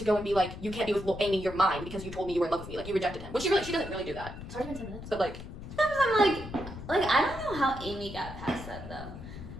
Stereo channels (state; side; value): noise; left; rumble, 11 dB below the sound